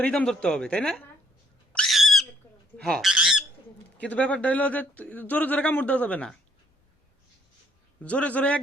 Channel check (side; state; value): both; normal; correlation 0.66